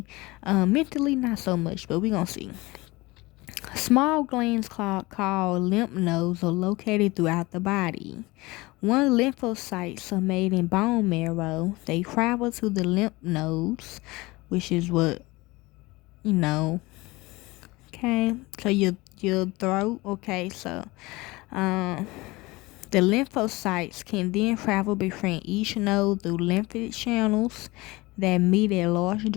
mentally not so much, but we gonna see. Small glands called lymph nodes are located throughout the body. When lymphocytes are made in bone marrow, they travel to the lymph nodes, which is what you know. Okay, so your throat. Okay, so the lymphocytes can then travel between each node through lymphatic channels that meet at large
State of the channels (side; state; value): right; quieter; 22.0 dB